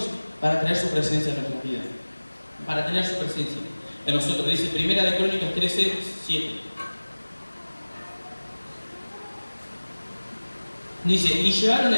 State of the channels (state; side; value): inverted; both; correlation -1.00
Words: para traer su presencia en nuestras vidas. Para tener su presencia en nosotros. Dice Primera de Crónicas 13:7. Dice, y llevaron